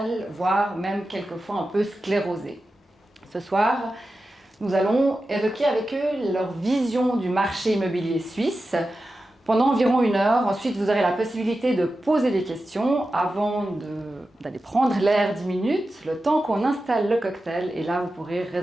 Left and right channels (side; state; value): both; normal; correlation 0.92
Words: voire même quelquefois un peu sclérosé. Ce soir, nous allons évoquer avec eux leur vision du marché immobilier suisse pendant environ 1 heure. Ensuite, vous aurez la possibilité de poser des questions avant d'aller prendre l'air 10 minutes, le temps qu'on installe le cocktail. Et là, vous pourrez